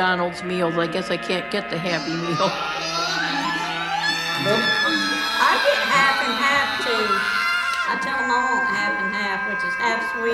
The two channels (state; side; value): identical; both; correlation 1.00